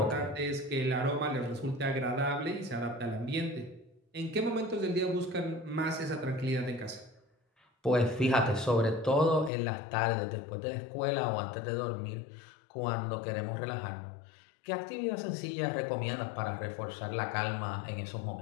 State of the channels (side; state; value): right; drops out; at 9.5 s